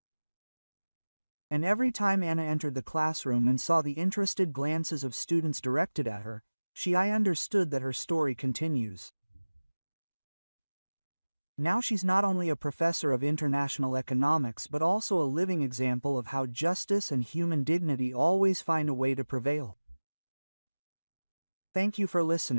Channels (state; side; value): inverted; both; correlation -1.00